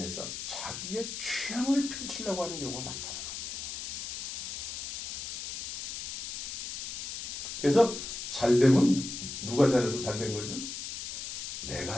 자기의 취향을 펼치려고 하는 경우가 많다. 그래서 잘되면 누가 잘해서 잘된 거죠?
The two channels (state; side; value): noise; left; hiss, 6 dB below the sound